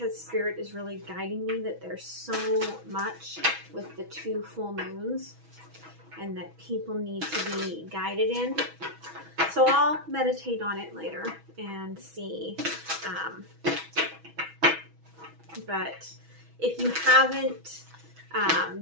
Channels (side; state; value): left; late; 6.1 ms